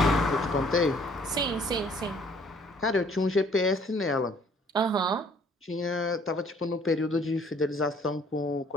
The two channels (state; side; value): normal; both; correlation 0.59